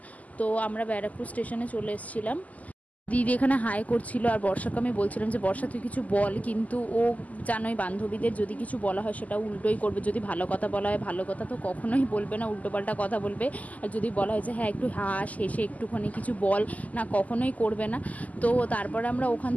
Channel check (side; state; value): right; late; 0.075 ms